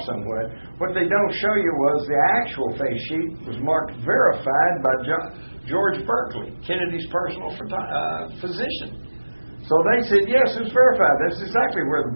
somewhat. What they don't show you was the actual face sheet was marked verified by George Berkeley, Kennedy's personal physician. So they said, yes, it was verified. That's exactly where the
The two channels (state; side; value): inverted; both; correlation -1.00